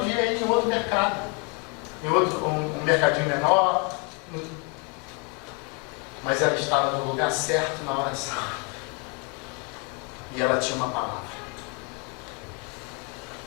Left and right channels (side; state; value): right; quieter; 33.8 dB